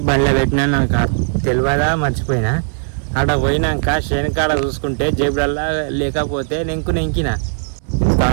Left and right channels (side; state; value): left; silent; 66 dB below the other